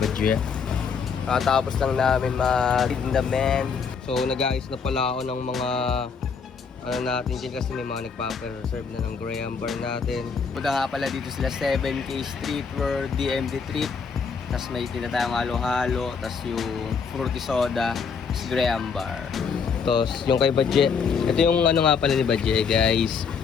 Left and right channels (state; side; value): quieter; right; 5.8 dB